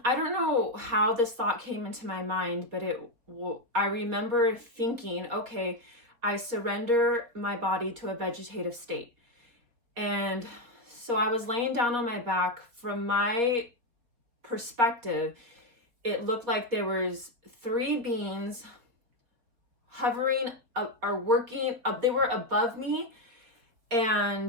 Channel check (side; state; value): left; late; 4.2 ms